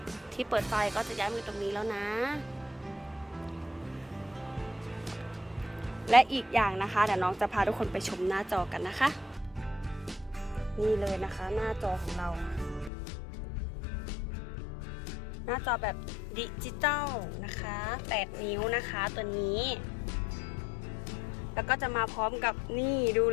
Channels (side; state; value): right; drops out; at 12.9 s